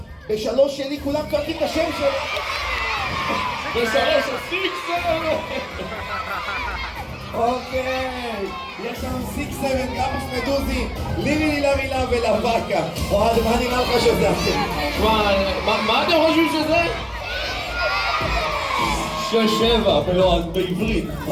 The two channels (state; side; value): identical; both; correlation 1.00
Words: בשלוש שלי כולם צועקים את השם שלו. בשלוש הסיקסר! אוקיי, יש לנו סיקסר, גמוס מדוזי, לילי לרילה ולוואקה. אוהד, מה נראה לך שזה אתם? מה אתם חושבים שזה? 6-7 בעברית.